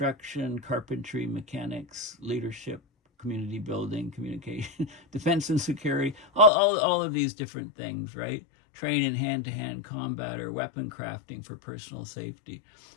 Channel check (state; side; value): drops out; right; at 6.5 s